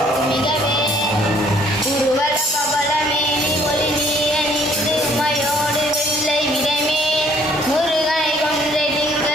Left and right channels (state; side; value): normal; both; correlation 0.61